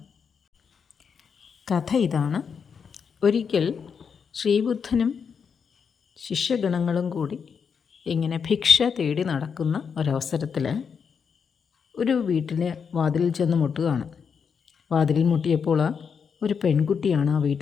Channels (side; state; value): right; quieter; 6.4 dB